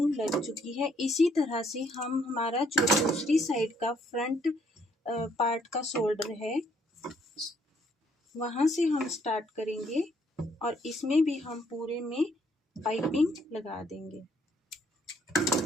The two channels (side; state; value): both; normal; correlation 0.68